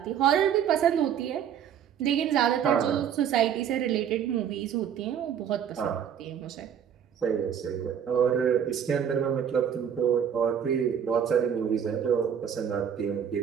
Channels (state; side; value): quieter; left; 8.6 dB